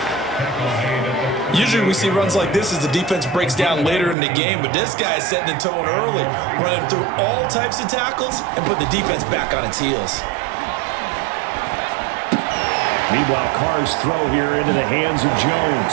Usually we see runs like this as the defense breaks down later in the game, but this guy is setting the tone early, running through all types of tackles and put the defense back on its heels. Meanwhile, Carr's throw here into the hands of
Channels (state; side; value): drops out; left; at 4.2 s